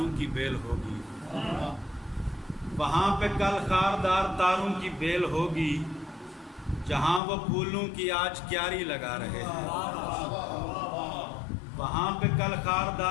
کی بیل ہوگی، وہاں پہ کل خاردار تاروں کی بیل ہوگی، جہاں وہ پھولوں کی آج کیاری لگا رہے ہیں۔ وہاں پہ کل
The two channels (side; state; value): right; drops out; at 7.2 s